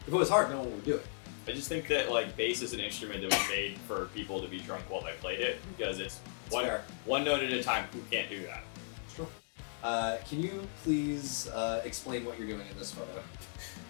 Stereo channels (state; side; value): silent; right; digital silence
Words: If it was hard, no one would do it. I just think that like bass is an instrument that was made for people to be drunk while they played it because it's one note at a time. Who can't do that? Sure. Can you please explain what you're doing in this photo?